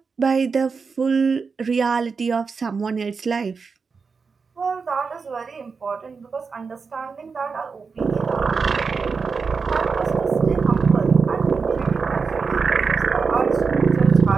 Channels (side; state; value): left; quieter; 5.1 dB